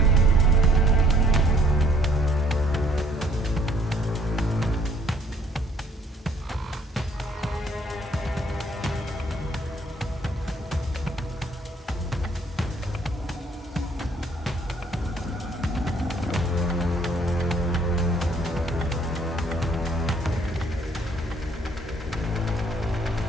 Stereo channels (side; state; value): both; normal; correlation 0.61